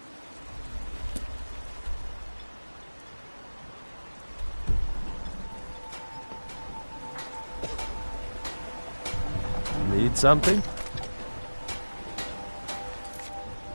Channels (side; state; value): both; inverted; correlation -1.00